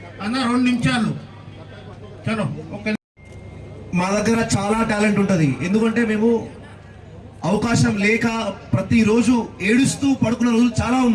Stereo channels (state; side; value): identical; both; correlation 1.00